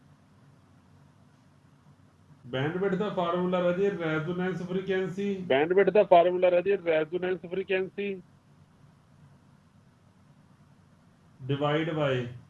ਵਿਡਥ ਦਾ ਫਾਰਮੂਲਾ ਰਾਜੇ ਰੈਜ਼ੋਨੈਂਸ ਫ੍ਰੀਕੁਐਂਸੀ, ਬੈਂਡ ਵਿਡਥ ਦਾ ਫਾਰਮੂਲਾ ਰਾਜੇ resonance frequency divide by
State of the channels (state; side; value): identical; both; correlation 1.00